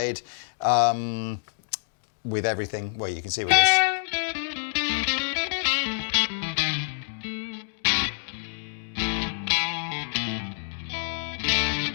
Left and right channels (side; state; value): right; silent; digital silence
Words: with everything. Well, you can see with this.